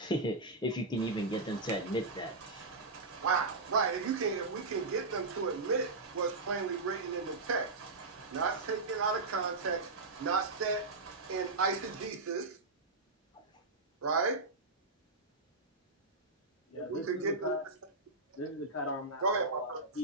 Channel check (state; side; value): quieter; left; 3.5 dB